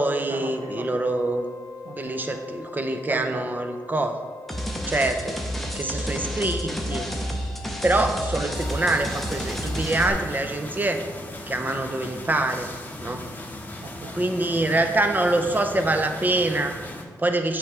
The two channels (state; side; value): normal; both; correlation 0.75